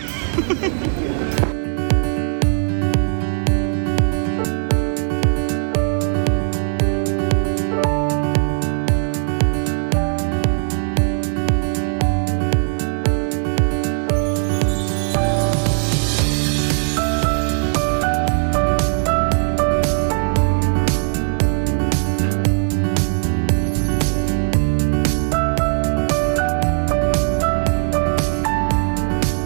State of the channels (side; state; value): left; silent; 60 dB below the other